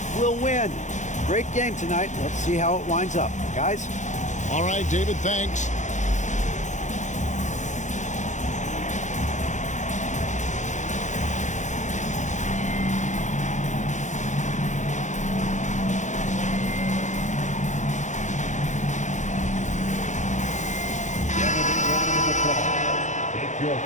we'll win. Great game tonight. Let's see how it winds up. Guys? All right, David, thanks.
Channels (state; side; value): late; right; 0.35 ms